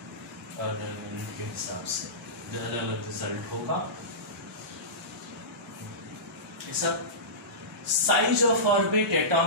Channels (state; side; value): normal; both; correlation -0.19